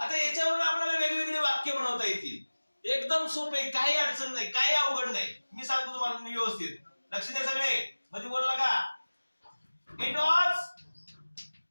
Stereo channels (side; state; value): both; inverted; correlation -1.00